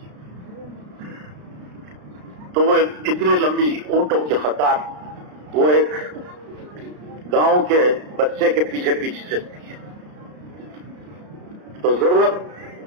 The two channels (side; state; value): left; late; 33 ms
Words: تو وہ اتنی لمبی اونٹوں کی قطار وہ ایک گاؤں کے بچے کے پیچھے پیچھے چلتی ہے۔ تو ضرورت